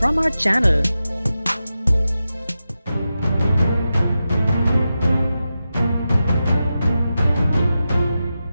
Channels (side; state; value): both; inverted; correlation -0.91